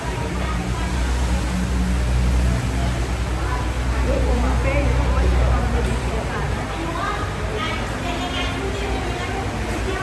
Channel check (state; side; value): identical; both; correlation 1.00